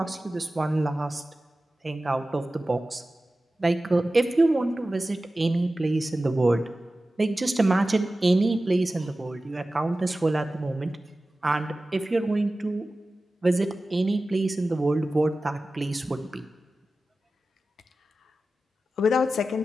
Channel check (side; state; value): both; normal; correlation 0.95